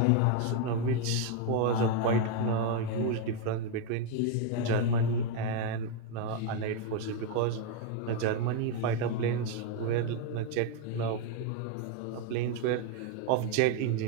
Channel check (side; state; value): both; different; correlation 0.01